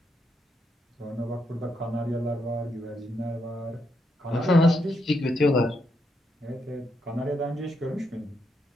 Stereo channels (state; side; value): normal; both; correlation 0.80